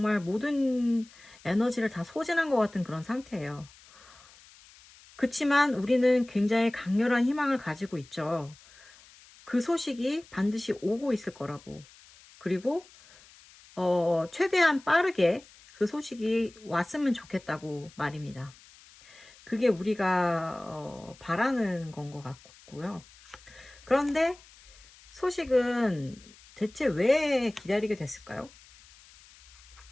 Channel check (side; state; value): left; noise; hiss, 24 dB below the sound